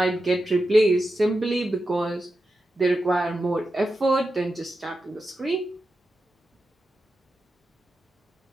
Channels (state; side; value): normal; both; correlation 0.90